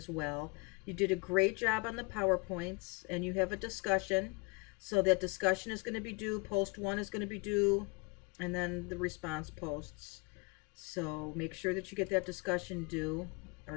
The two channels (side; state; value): right; quieter; 29.9 dB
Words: well. You did a great job on the PowerPoints, and you have a discussion. So that discussion is going to be due, post 1 is going to be due, and then the response posts. So make sure that you get that discussion due, or